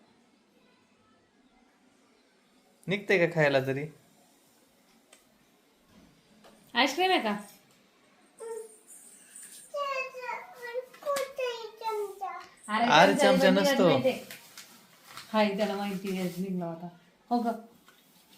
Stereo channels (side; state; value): both; identical; correlation 1.00